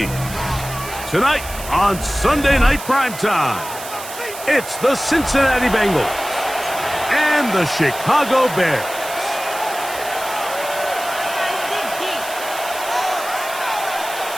Tonight on Sunday Night Primetime, it's the Cincinnati Bengals and the Chicago Bears.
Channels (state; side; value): noise; right; hiss, 11 dB below the sound